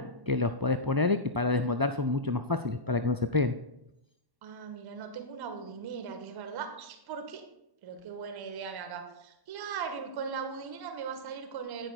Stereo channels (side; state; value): left; late; 1.1 ms